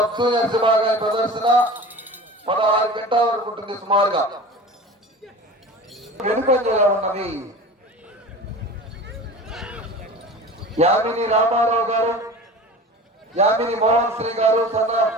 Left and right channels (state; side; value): normal; both; correlation 0.36